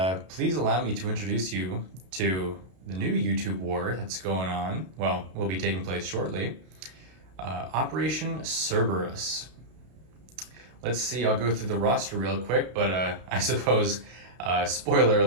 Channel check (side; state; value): left; late; 32 ms